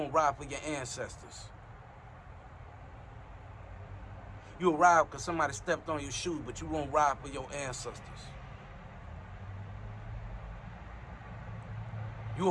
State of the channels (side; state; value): both; identical; correlation 1.00